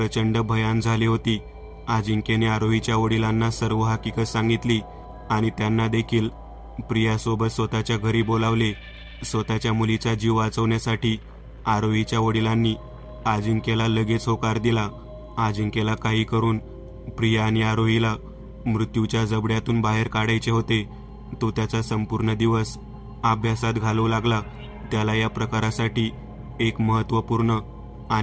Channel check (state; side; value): identical; both; correlation 1.00